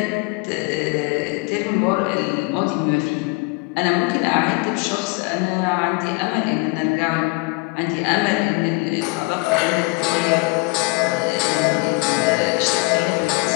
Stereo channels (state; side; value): quieter; right; 26.9 dB